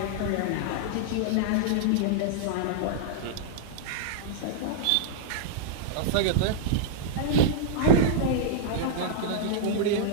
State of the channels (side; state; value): both; different; correlation -0.01